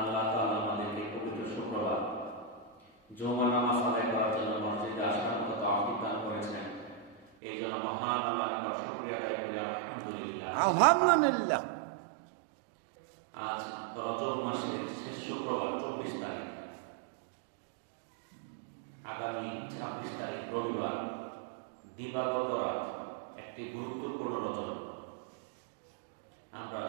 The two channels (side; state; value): left; drops out; at 7.2 s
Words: আল্লাহ তাআলা আমাদেরকে পবিত্র শুক্রবার জুমার নামাজ আদায় করার জন্য মসজিদে আসার মতো তৌফিক দান করেছেন। এই জন্য মহান আল্লাহর নিকট শুকরিয়া আদায় করি আলহামদুলিল্লাহ। আলহামদুলিল্লাহ। আজ রজব মাসের শেষ শুক্রবার 24 তারিখ, আগামী 26 তারিখ রবিবার, দিবাগত রাত, একটি গুরুত্বপূর্ণ রজব। আমরা